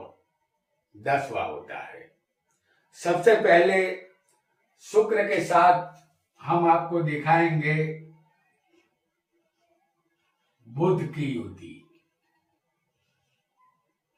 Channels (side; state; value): both; identical; correlation 1.00